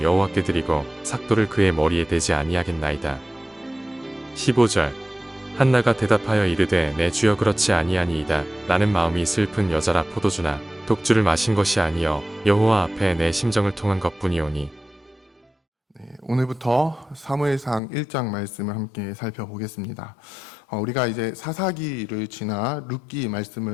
여호와께 드리고 삭도를 그의 머리에 대지 아니하겠나이다. 15절 한나가 대답하여 이르되 내 주여 그렇지 아니하니이다. 나는 마음이 슬픈 여자라 포도주나 독주를 마신 것이 아니여 여호와 앞에 내 심정을 통한 것뿐이오니. 오늘부터 사무엘상 1장 말씀을 함께 살펴보겠습니다. 우리가 이제 사사기를 지나 룻기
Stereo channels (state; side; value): drops out; right; at 17.8 s